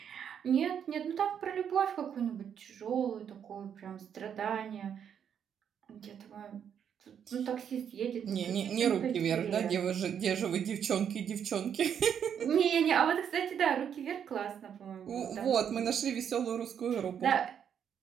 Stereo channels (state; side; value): quieter; left; 8.3 dB